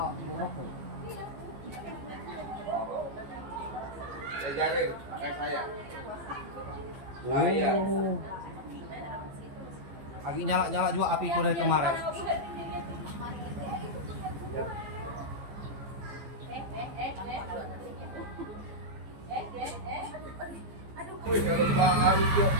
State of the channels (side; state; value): left; late; 15 ms